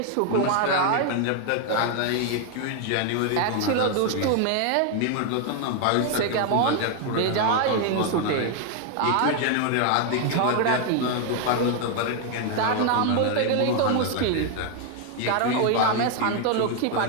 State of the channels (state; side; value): different; both; correlation 0.01